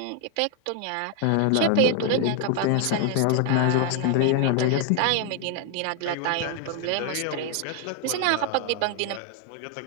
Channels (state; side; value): different; both; correlation 0.00